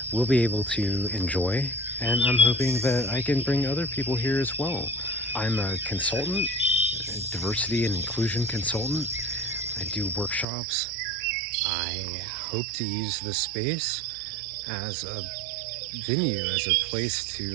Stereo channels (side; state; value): left; drops out; at 10.5 s